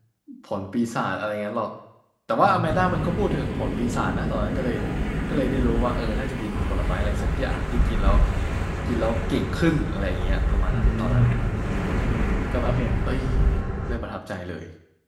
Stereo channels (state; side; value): identical; both; correlation 1.00